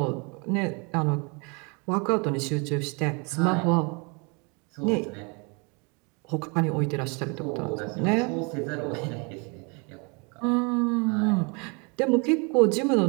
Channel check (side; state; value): left; quieter; 32.1 dB